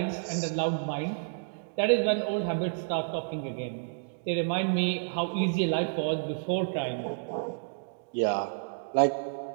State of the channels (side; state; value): left; silent; digital silence